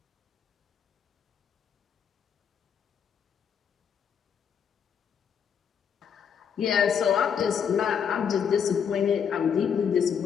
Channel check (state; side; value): quieter; right; 7.5 dB